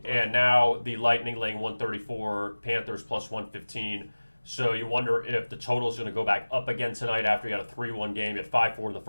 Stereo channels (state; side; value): inverted; both; correlation -1.00